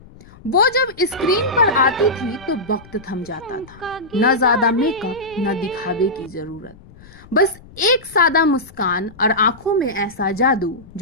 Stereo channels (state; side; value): noise; left; rumble, 22 dB below the sound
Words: वो जब स्क्रीन पर आती थी तो वक्त थम जाता था। न ज्यादा मेकअप, न दिखावे की जरूरत, बस एक सादा मुस्कान और आंखों में ऐसा जादू